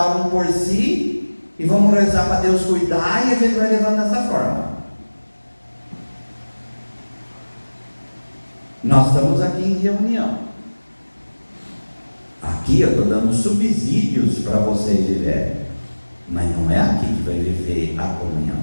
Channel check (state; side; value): inverted; both; correlation -1.00